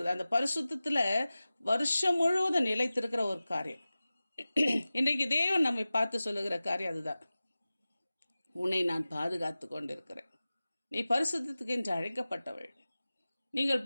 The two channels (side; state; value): both; inverted; correlation -0.96